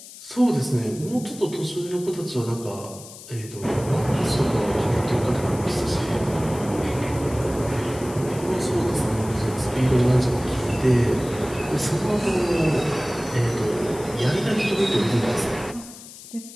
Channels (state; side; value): noise; left; hiss, 16 dB below the sound